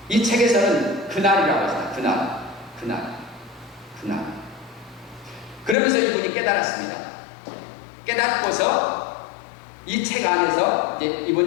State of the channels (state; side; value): drops out; right; at 5.8 s